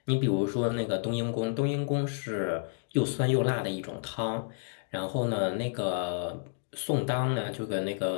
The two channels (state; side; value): silent; right; digital silence